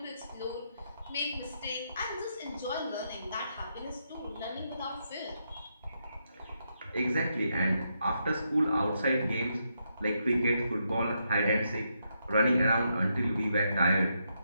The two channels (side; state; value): both; inverted; correlation -0.81